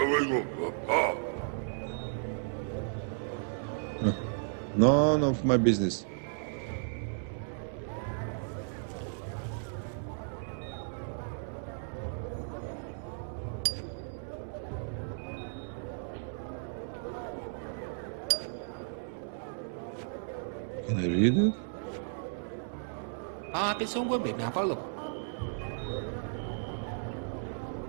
None of my business. Can I read it? Tiếng súng của Việt Nam pháp luật.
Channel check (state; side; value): silent; left; 55 dB below the other